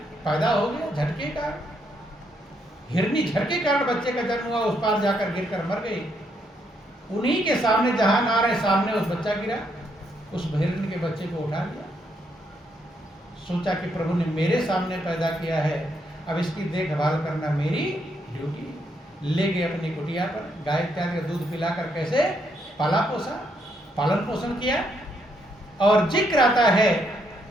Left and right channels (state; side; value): normal; both; correlation 0.75